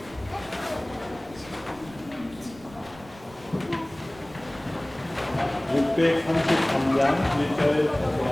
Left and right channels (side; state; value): right; noise; rumble, 21 dB below the sound